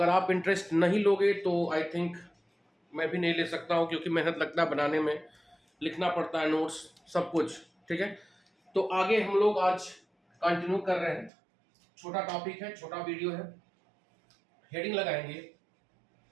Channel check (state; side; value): drops out; left; at 11.3 s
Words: आप इंटरेस्ट नहीं लोगे तो आई थिंक मैं भी नहीं ले सकता हूँ, क्योंकि मेहनत लगता है बनाने में, लिखना पड़ता है नोट्स, सब कुछ। ठीक है, तो आगे हम लोग आज कंटिन्यू कर रहे हैं। छोटा टॉपिक है, छोटा वीडियो है। हेडिंग लगाएंगे